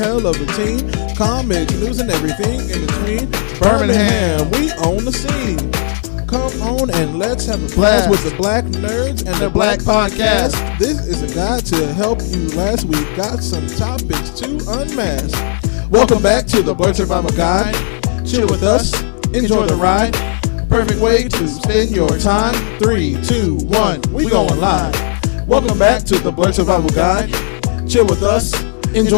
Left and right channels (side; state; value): right; silent; digital silence